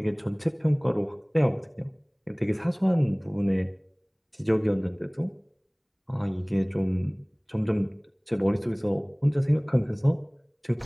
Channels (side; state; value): both; identical; correlation 1.00